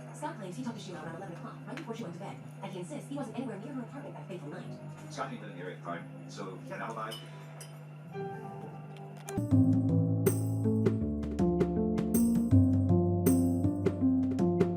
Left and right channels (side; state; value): both; identical; correlation 1.00